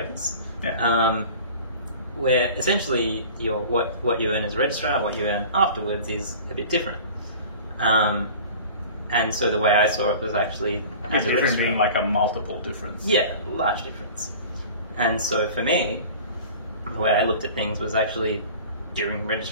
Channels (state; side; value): inverted; both; correlation -0.41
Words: guess. Yeah. Where essentially what you earn as a registrar, what you earn afterwards is a bit different. And so the way I saw it was actually as a Different registrar. being like a multiple difference. Yeah, large difference. And so for me, the way I looked at things was actually during